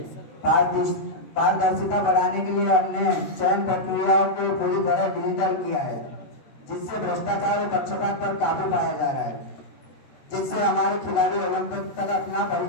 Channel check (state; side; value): late; right; 14 ms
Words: पारदर्शिता बढ़ाने के लिए हमने चयन प्रक्रियाओं को पूरी तरह डिजिटल किया है, जिससे भ्रष्टाचार और पक्षपात पर काबू पाया जा रहा है, जिससे हमारे खिलाड़ी ओलंपिक तक अपना